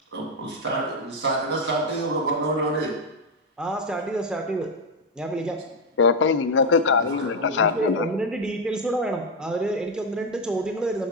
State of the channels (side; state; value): both; normal; correlation 0.05